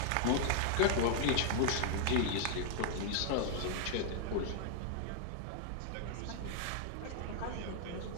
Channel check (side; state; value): both; different; correlation -0.01